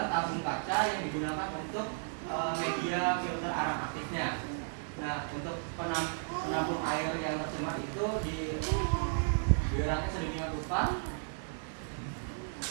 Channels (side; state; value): left; silent; digital silence